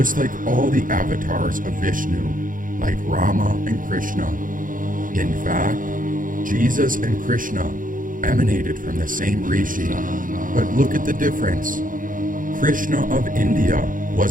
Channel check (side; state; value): left; late; 0.39 ms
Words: like all the avatars of Vishnu, like Rama and Krishna. In fact, Jesus and Krishna emanated from the same rishi, but look at the difference. Krishna of India